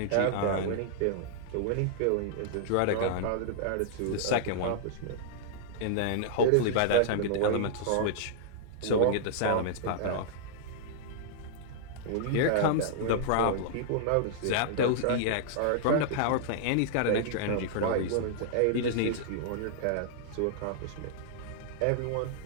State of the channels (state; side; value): different; both; correlation -0.01